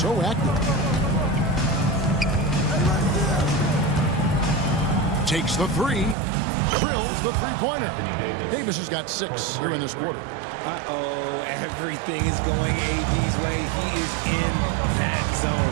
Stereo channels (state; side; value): drops out; left; at 6.2 s